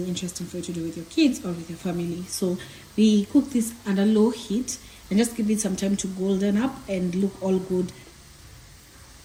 interesting for you to do with your kids or with your family. So we cook this under low heat and just give it some time to golden up and look all good.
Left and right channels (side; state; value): both; identical; correlation 1.00